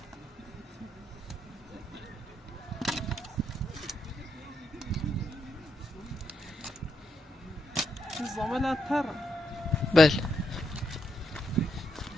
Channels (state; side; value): normal; both; correlation 0.80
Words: کاملا تر. بله.